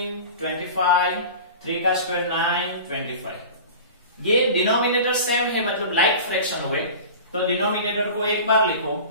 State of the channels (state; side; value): inverted; both; correlation -0.36